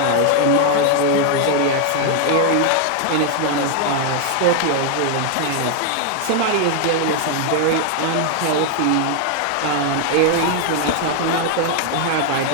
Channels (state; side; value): different; both; correlation 0.00